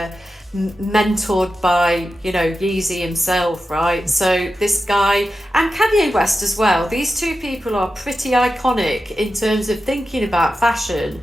mentored by, Yeezy himself, right? So this guy and Kanye West as well. These two people are pretty iconic in terms of thinking about fashion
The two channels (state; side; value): normal; both; correlation 0.91